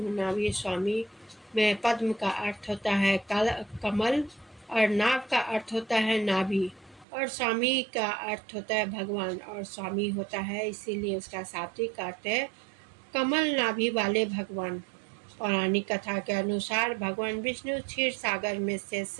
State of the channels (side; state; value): left; drops out; at 7.1 s